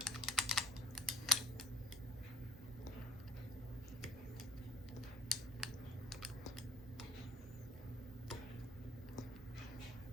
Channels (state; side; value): normal; both; correlation 0.54